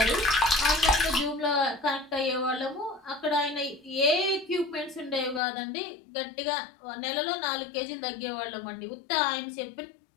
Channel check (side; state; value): right; drops out; at 5.4 s